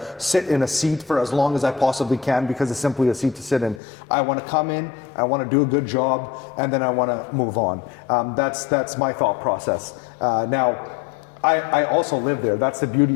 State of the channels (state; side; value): drops out; right; at 3.8 s